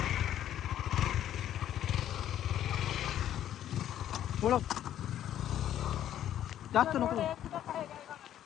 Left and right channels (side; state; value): right; quieter; 11.3 dB